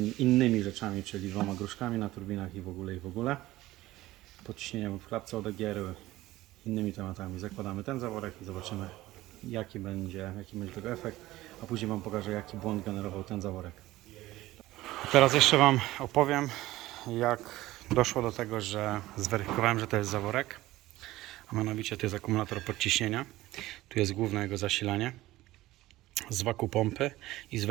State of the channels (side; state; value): left; quieter; 17.0 dB